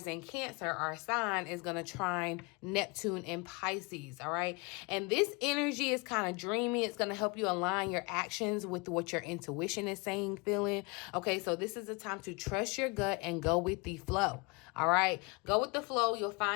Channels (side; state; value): right; quieter; 29.1 dB